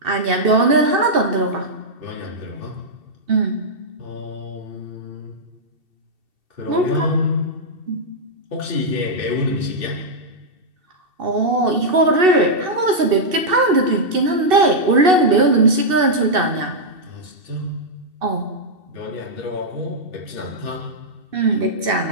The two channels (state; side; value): late; left; 2.7 ms